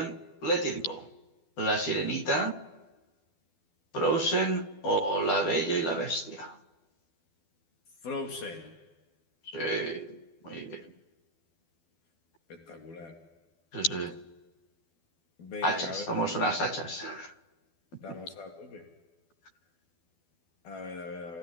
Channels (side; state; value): right; late; 12 ms